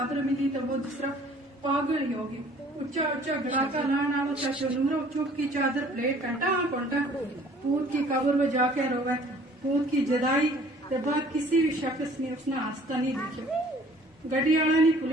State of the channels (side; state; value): both; normal; correlation 0.54